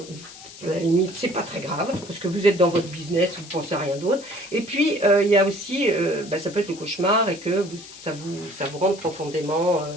la limite, c'est pas très grave, parce que vous êtes dans votre business, vous pensez à rien d'autre. Et puis, il y a aussi, ça peut être le cauchemar et que ça vous rende profondément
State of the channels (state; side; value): noise; left; hiss, 17 dB below the sound